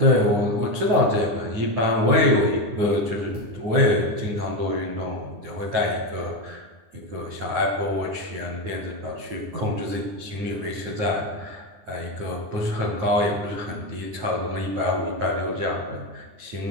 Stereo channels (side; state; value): left; late; 9.8 ms